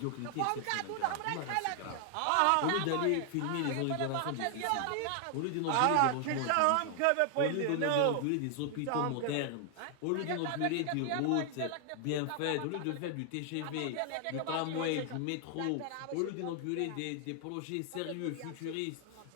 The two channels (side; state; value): both; different; correlation 0.00